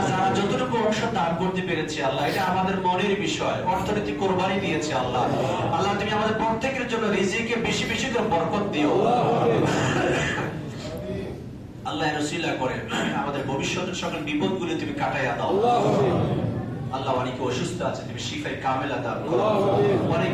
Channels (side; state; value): both; identical; correlation 1.00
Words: যারা যতটুকু অংশ দান করতে পেরেছে আল্লাহ এটা আমাদের মনের বিষয়, অর্থনৈতিক কোরবানি দিয়েছে আল্লাহ। আল্লাহ তুমি আমাদের প্রত্যেকের জন্য রিজিকে বেশি বেশি করে বরকত দিও। আল্লাহ রসিলা করে আমাদের ভবিষ্যতের সকল বিপদগুলি তুমি কাটাইয়া দাও। আল্লাহ অনেকে অসুস্থ আছে তুমি শিফায়ে কামেলা দান করো।